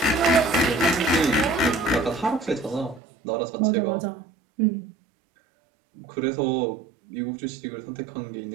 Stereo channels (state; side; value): drops out; left; at 3.0 s